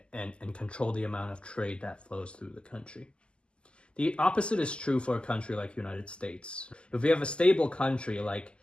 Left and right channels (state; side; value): late; right; 0.051 ms